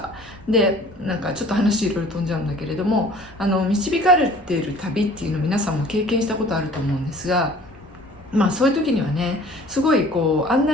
でなんかちょっと話いろいろ飛んじゃうんだけれども導かれている旅っていうの皆さんも経験したことあると思うんですが、そういう時にはねすごい案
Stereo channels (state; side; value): normal; both; correlation 0.49